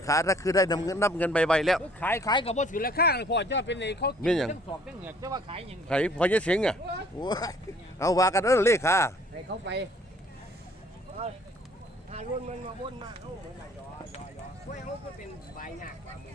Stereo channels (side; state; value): both; normal; correlation 0.57